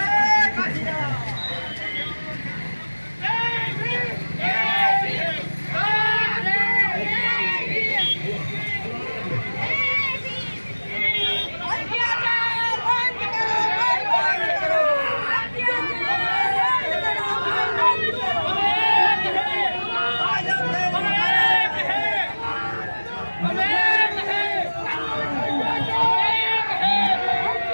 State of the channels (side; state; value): both; inverted; correlation -1.00